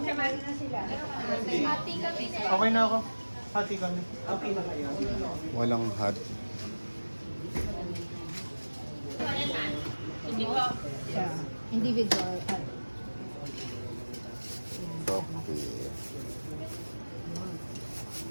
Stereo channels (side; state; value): both; inverted; correlation -1.00